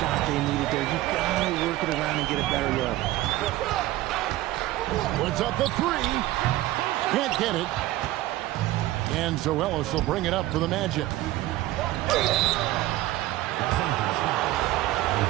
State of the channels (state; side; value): quieter; left; 16.4 dB